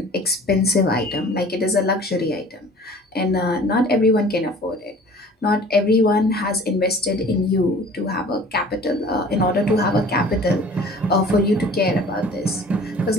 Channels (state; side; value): normal; both; correlation 0.47